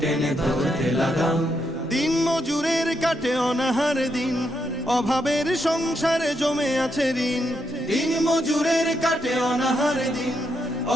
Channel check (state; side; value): normal; both; correlation 0.80